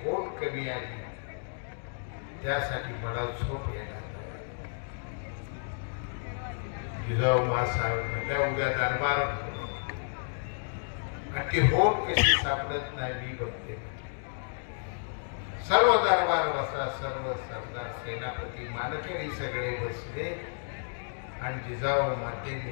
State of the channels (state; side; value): silent; right; digital silence